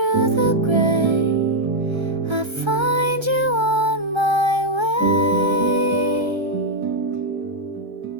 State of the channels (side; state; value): left; late; 1.3 ms